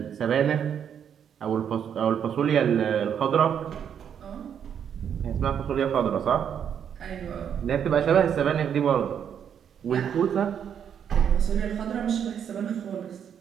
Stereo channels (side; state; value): left; quieter; 8.4 dB